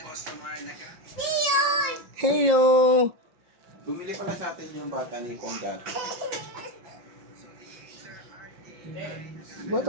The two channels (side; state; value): left; late; 5.7 ms